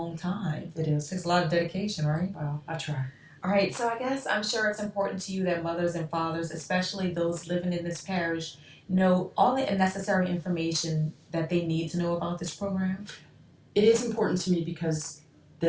time. It is. Takes a lot of dedication, right? Well, I try. All right, so I guess I'm sure it's important to you that mothers and fathers, especially those living in this parish, know all the necessary information that they need to know about this program. It is important to me because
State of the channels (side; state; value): both; identical; correlation 1.00